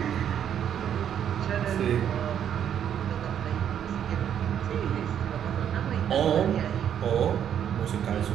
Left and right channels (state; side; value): quieter; left; 9.3 dB